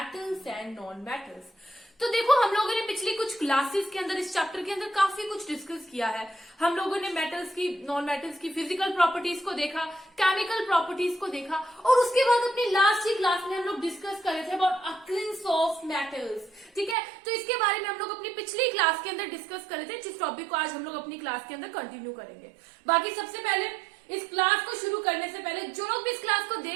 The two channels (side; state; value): left; drops out; at 16.9 s